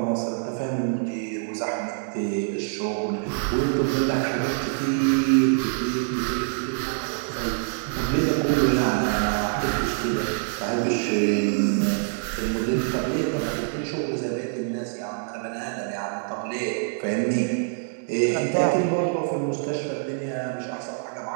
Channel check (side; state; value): left; silent; digital silence